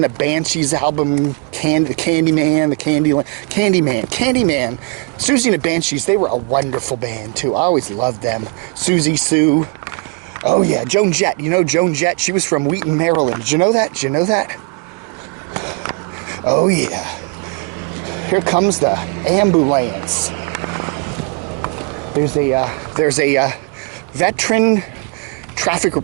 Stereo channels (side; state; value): left; quieter; 33.6 dB